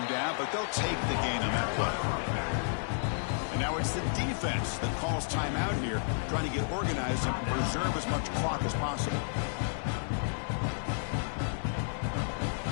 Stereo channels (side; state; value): right; silent; digital silence